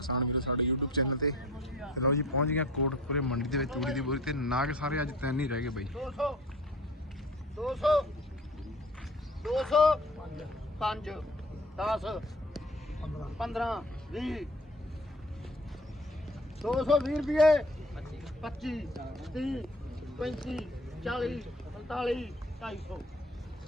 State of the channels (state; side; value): normal; both; correlation 0.46